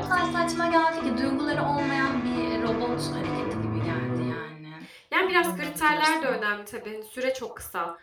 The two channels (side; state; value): both; identical; correlation 1.00